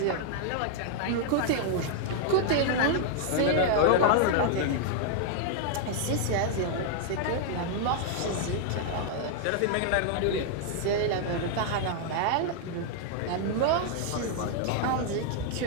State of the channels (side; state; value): both; different; correlation 0.00